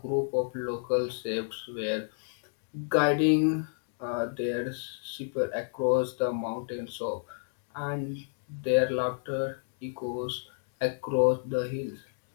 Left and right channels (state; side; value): silent; right; digital silence